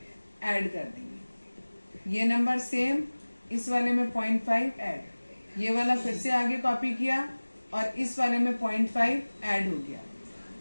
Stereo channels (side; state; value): both; inverted; correlation -1.00